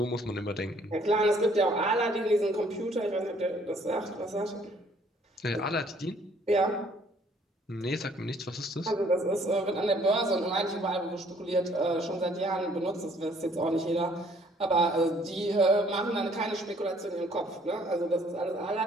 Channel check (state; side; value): normal; both; correlation 0.61